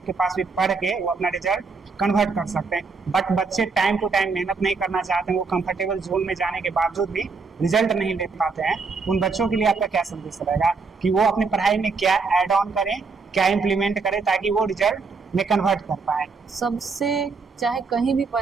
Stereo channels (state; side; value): quieter; left; 4.5 dB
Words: के पास भी पढ़ के वो अपना रिजल्ट कन्वर्ट कर सकते हैं। बट बच्चे टाइम टू टाइम मेहनत नहीं करना चाहते हैं, वो कंफर्टेबल जोन में जाने के बावजूद भी रिजल्ट नहीं ले पाते हैं। उन बच्चों के लिए आपका क्या संदेश रहेगा कि वो अपनी पढ़ाई में क्या ऐड ऑन करें, क्या इम्प्लीमेंट करें ताकि वो रिजल्ट में कन्वर्ट कर पाए? सबसे चाहे कहीं भी